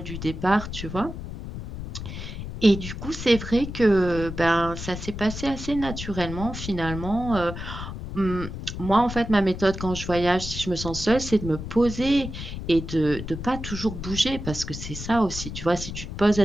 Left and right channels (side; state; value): left; noise; rumble, 8 dB below the sound